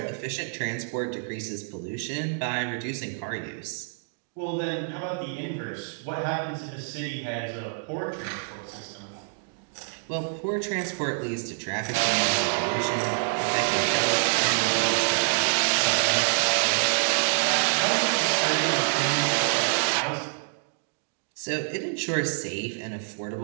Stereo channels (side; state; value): left; silent; digital silence